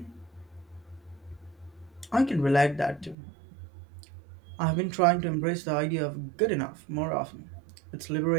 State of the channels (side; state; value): left; drops out; at 3.2 s